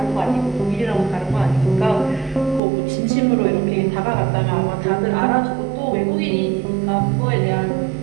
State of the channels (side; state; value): left; drops out; at 2.6 s